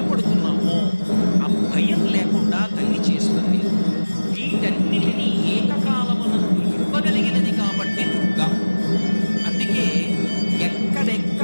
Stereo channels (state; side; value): inverted; both; correlation -1.00